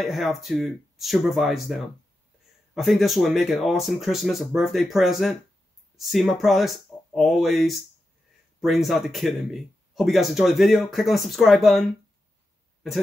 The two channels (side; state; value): both; normal; correlation 0.89